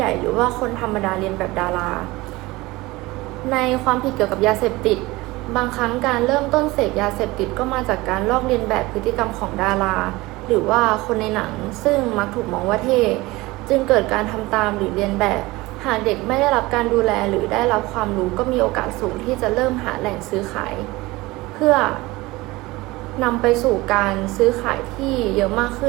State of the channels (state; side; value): quieter; left; 20.8 dB